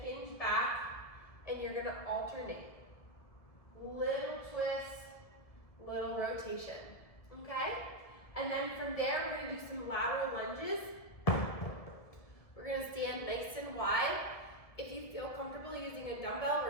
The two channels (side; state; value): right; late; 1.7 ms